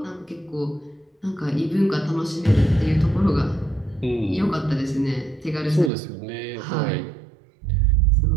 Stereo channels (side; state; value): left; drops out; at 5.9 s